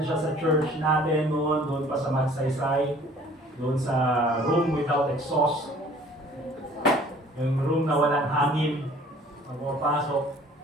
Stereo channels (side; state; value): both; normal; correlation 0.52